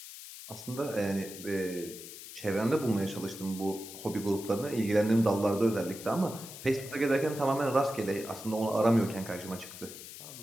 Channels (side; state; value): left; noise; hiss, 13 dB below the sound